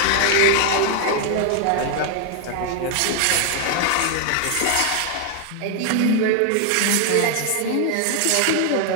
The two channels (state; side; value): different; both; correlation 0.00